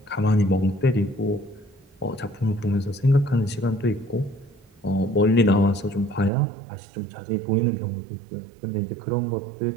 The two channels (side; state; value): left; drops out; at 6.3 s